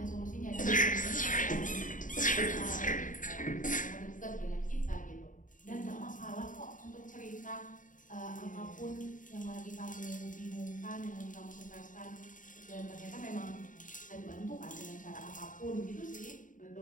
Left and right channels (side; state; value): right; late; 0.38 ms